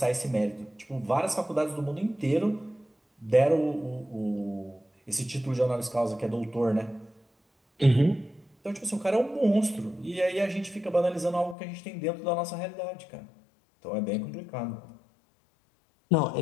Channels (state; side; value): drops out; right; at 11.6 s